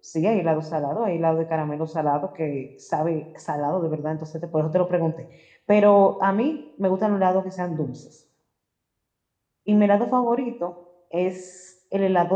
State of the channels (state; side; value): identical; both; correlation 1.00